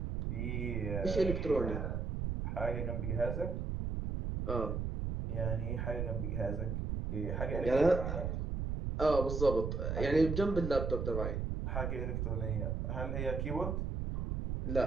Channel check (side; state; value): right; noise; rumble, 2 dB below the sound